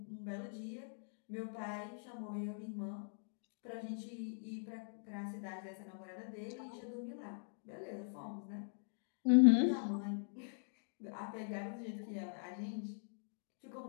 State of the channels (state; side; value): silent; right; digital silence